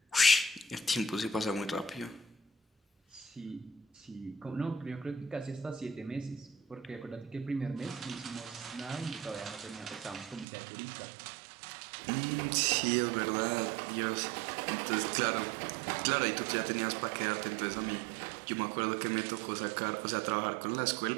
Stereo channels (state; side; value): drops out; left; at 10.5 s